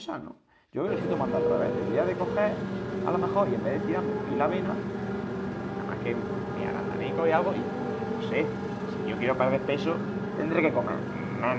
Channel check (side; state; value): both; identical; correlation 1.00